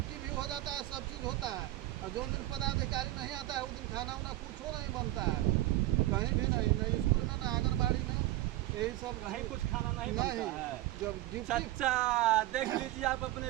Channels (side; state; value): left; quieter; 16.5 dB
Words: भी हो जाता है, सब चीज़ होता है। और जो दिन पदाधिकारी नहीं आता है उस दिन खाना उना कुछो नहीं बनता है, कहीं भी नहीं, नहीं स्कूल में ना आंगनबाड़ी में, यही सब कहीं कुछ खाना नहीं बनता है। जब ड्यूटी, सच्चा देख लीजिए आप अपने